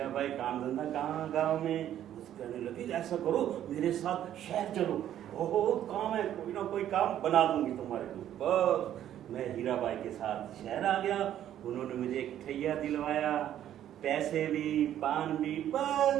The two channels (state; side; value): quieter; left; 11.3 dB